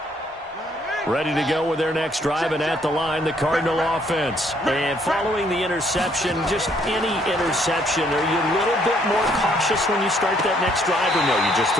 Ready to go with their next drive, and at the line, the Cardinal offense. And following the interception, just any interception, are you a little bit more cautious when you start that next drive, or no, you just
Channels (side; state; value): both; normal; correlation 0.67